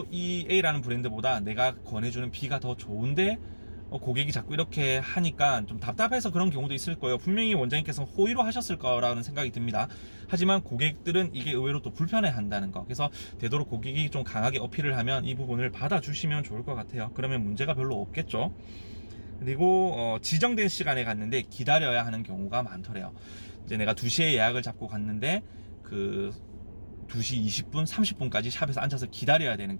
이 A라는 브랜드보다 내가 권해주는 B가 더 좋은데 고객이 자꾸 이렇게 하니까 좀 답답해서 그런 경우도 있을 거예요. 분명히 원장님께서 호의로 하셨을 거라는 생각이 듭니다. 하지만 고객들은 이게 의외로 또 불편해 한다는 거, 그래서 되도록 고객이 좀 강하게 어필을 하면 이 부분을 받아주시면 좋을 것 같아요. 그러면 문제가 별로 없겠죠. 그리고 지정된 시간에 갔는데 기다려야 하는 경우가 많더래요. 이제 내가 2시에 예약을 잡고 갔는데 그 2시 20분, 30분까지 샵에서 앉아서 기다려야 되는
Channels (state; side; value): inverted; both; correlation -1.00